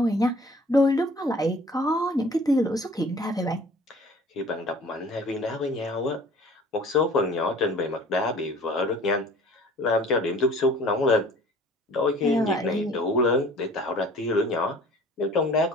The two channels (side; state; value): both; normal; correlation 0.49